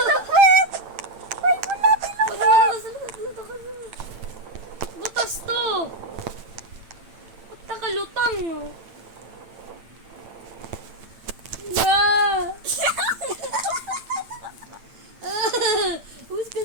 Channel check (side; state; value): left; late; 8.9 ms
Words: sa puweto. May bulati sa Wala na ka sa luto ka na. Butas to. Ba't nakalutang? Na! Umus ka